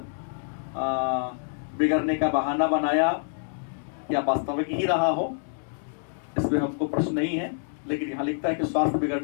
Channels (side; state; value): right; silent; digital silence